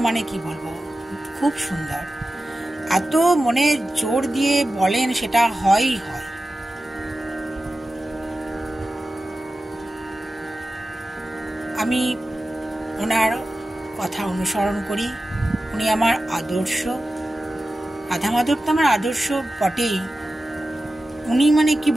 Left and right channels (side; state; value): both; normal; correlation 0.94